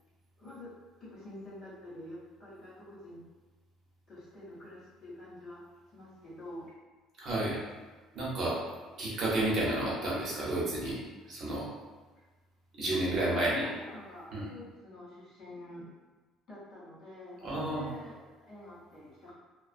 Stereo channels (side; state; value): both; normal; correlation 0.59